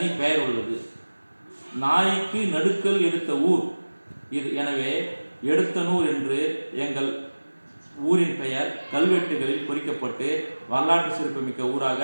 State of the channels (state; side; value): inverted; both; correlation -1.00